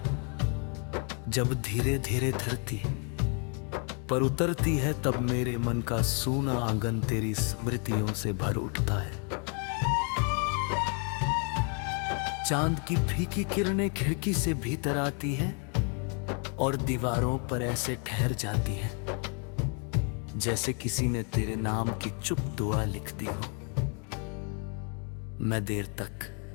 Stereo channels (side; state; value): right; quieter; 38.9 dB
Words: जब धीरे धीरे धरती पर उतरती है, तब मेरे मन का सूना आंगन तेरी स्मृतियों से भर उठता है। चांद की फीकी किरणें खिड़की से भीतर आती है और दीवारों पर ऐसे ठहर जाती है जैसे किसी ने तेरे नाम की चुप दुआ लिख दी हो। मैं देर तक